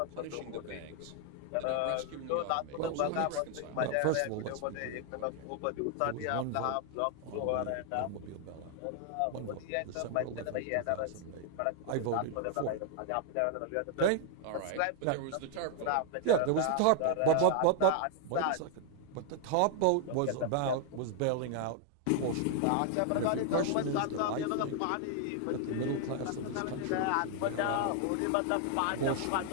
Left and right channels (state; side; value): different; both; correlation 0.00